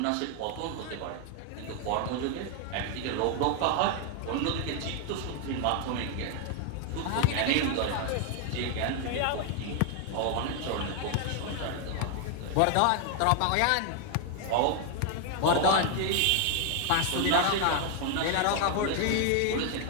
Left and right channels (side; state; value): both; different; correlation 0.00